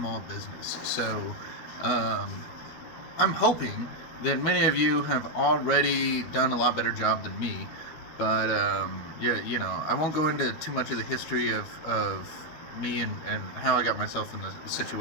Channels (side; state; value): right; late; 13 ms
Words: business. So I'm hoping that many of you have already done a lot better job than me, but yeah, I won't go into too much of the history of me and how I got myself in the